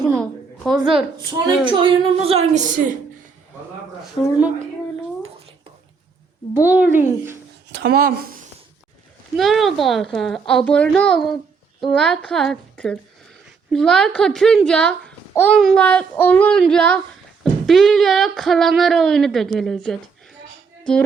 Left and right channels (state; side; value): quieter; left; 5.3 dB